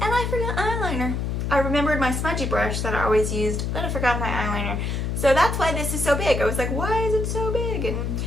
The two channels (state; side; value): noise; left; hum, 1 dB below the sound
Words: and I forgot eyeliner. I remembered my smudgy brush that I always used, but I forgot my eyeliner. So that's why this is so big. I was like, why is it so big? And